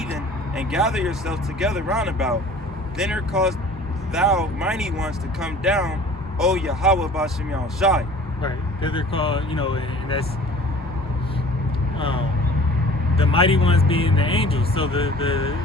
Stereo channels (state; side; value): normal; both; correlation 0.46